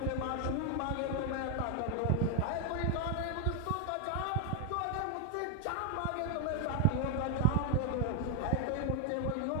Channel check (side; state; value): both; different; correlation 0.00